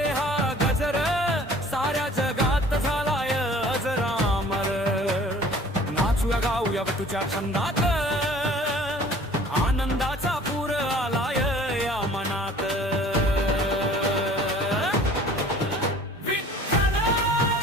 हा गजर, साऱ्या जगात झालाय अजरामर। नाचूया गाऊया तुझ्या छंदात, आनंदाचा पूर आलाय या मनात।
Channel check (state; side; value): normal; both; correlation 0.49